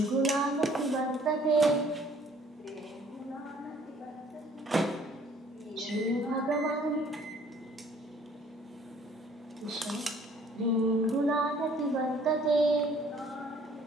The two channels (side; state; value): both; normal; correlation 0.58